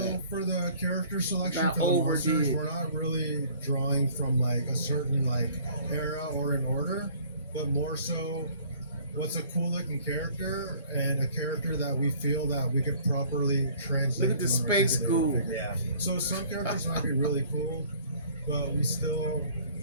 for the character selection Not for the monsters, overdid. we're not really drawing from like a certain like era or an order, but more so what's a cool looking character and a character that we feel that we could properly translate. Look at the to an space articulated ghoul. figure. Yeah. So some characters might be really cool, but we still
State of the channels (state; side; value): inverted; both; correlation -0.54